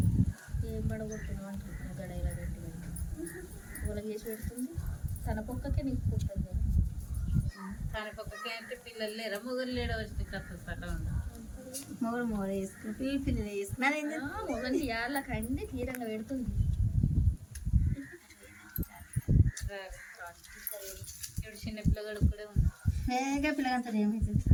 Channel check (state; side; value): identical; both; correlation 1.00